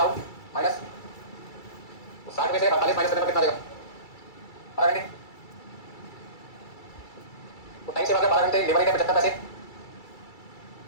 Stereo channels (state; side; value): late; right; 2.3 ms